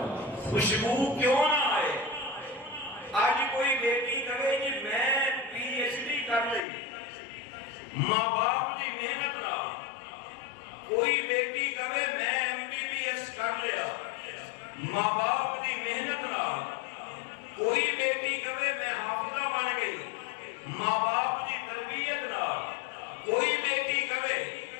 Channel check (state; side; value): drops out; right; at 6.6 s